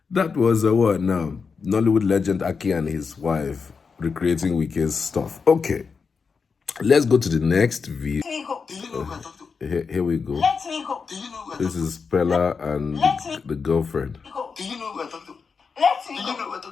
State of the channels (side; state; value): right; quieter; 5.3 dB